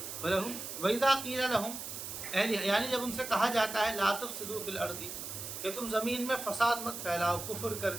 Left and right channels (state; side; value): noise; right; hiss, 7 dB below the sound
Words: वलहुम वइज़ा क़ील लहुम यानी जब उनसे कहा जाता है ला तुफ़सिदू फ़िल अर्दी कि तुम ज़मीन में फ़साद मत फैलाओ कुफ्र